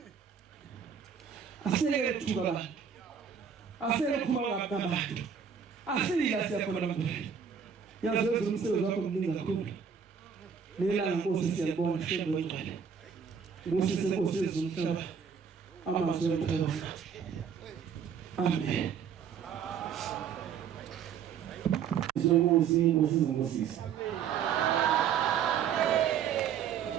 asiyeke ukuthuka abantu asiyeke ukukhuluma ngabantu asila siyakhona abantu yazi wezulu umsebenzi wakho mningi kakhulu nelanga Nkosi siyalibona shembe ngcwele ngosise Nkosi yezumhlaba amazwi emphela amen Nkosi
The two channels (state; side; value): quieter; left; 7.3 dB